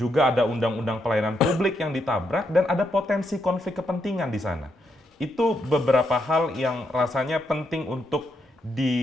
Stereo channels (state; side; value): normal; both; correlation 0.79